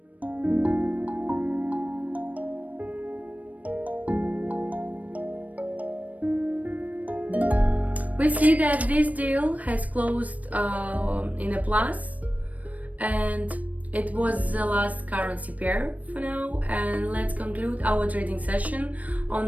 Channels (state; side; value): late; left; 0.071 ms